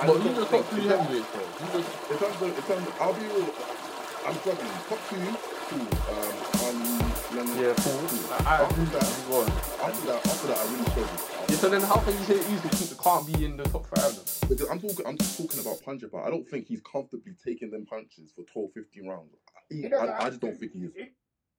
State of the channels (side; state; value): both; identical; correlation 1.00